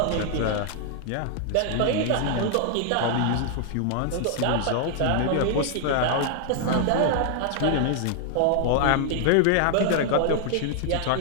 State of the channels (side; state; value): both; different; correlation 0.00